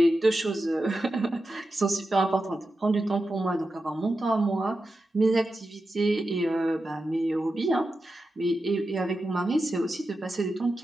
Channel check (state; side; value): normal; both; correlation 0.91